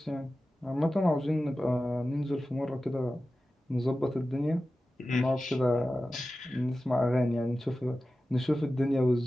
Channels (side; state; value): both; normal; correlation 0.94